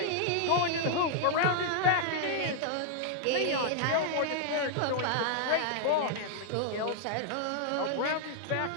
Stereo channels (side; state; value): both; different; correlation -0.01